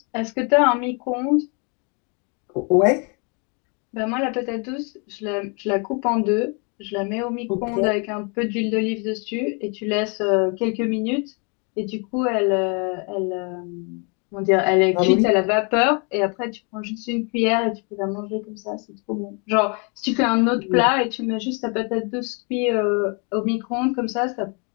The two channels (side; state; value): right; quieter; 35.1 dB